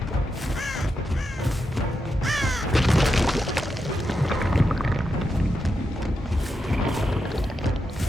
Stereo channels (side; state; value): both; normal; correlation 0.86